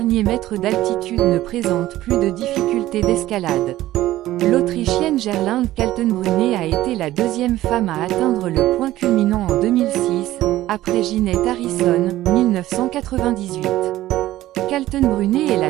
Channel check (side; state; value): left; quieter; 15.1 dB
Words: mètres d'altitude ne présentent plus de difficultés d'escalade. L'Autrichienne Gerlinde Kaltenbrunner a été la 2e femme à atteindre le point culminant en 2006, après Ginette Harrison, 1998. Kaltenbrunner est la